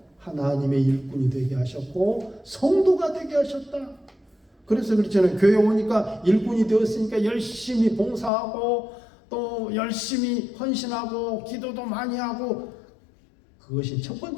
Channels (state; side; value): drops out; right; at 8.3 s